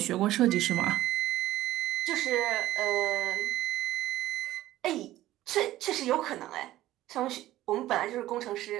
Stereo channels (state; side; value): quieter; left; 15.1 dB